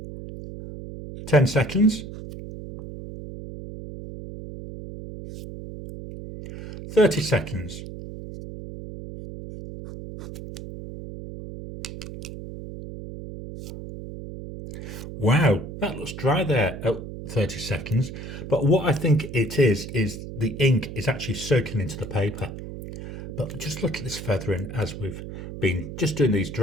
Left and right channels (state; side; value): noise; right; hum, 10 dB below the sound